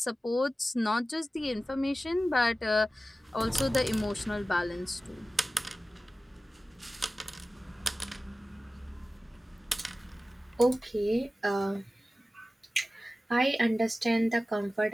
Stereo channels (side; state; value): both; normal; correlation 0.96